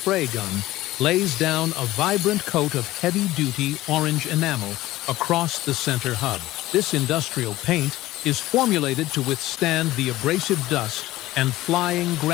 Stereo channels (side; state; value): right; quieter; 16.7 dB